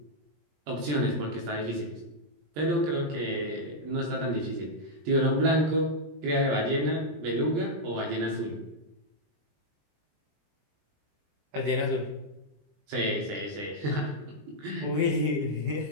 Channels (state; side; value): late; left; 20 ms